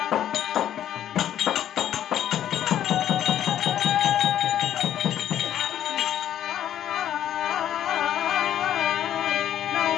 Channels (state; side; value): quieter; right; 10.9 dB